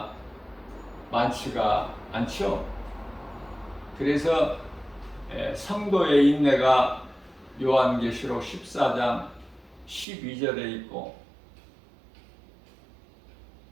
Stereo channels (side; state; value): left; drops out; at 10.1 s